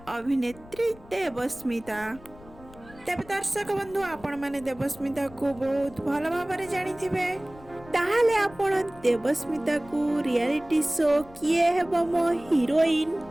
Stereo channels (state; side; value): noise; left; rumble, 21 dB below the sound